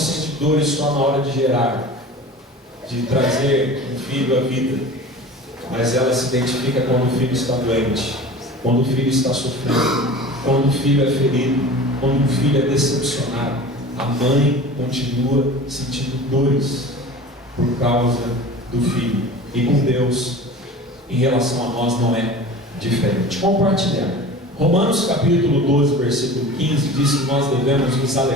dores só na hora de gerar, de trazer um filho à vida, mas ela se identifica quando o filho está doente, quando o filho está sofrendo, quando o filho é ferido, quando o filho é decepcionado. A mãe continua sentindo dores por causa do filho. E com Deus, em relação a nós, não é diferente. Compartilhar. Romanos capítulo 12, versículo 15 diz que nós devemos nos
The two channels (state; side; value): normal; both; correlation 0.38